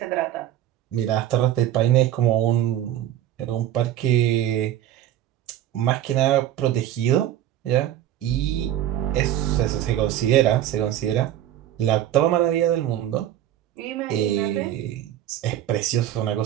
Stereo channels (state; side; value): quieter; left; 12.1 dB